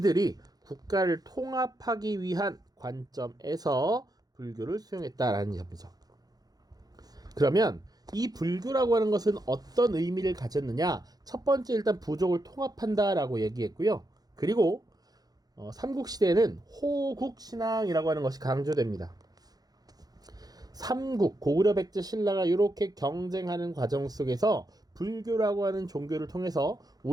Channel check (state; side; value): late; left; 0.19 ms